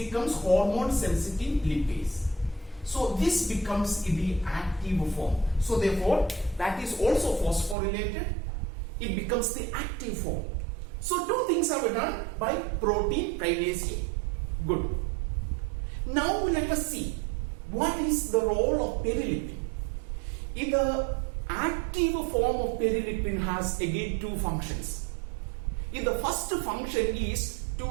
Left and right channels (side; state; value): left; drops out; at 7.8 s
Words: hormone sensitive lipase. So this becomes the active form. So therefore that is also phosphorylated. It becomes the active form. So two things are done by protein kinase A. Good. Now let us see what is the role of perilipin. In the active form of perilipin has again two functions. In the first function is to